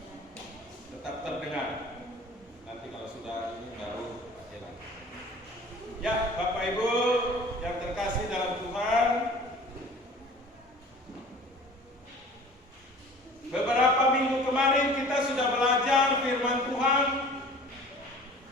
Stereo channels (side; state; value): both; normal; correlation 0.45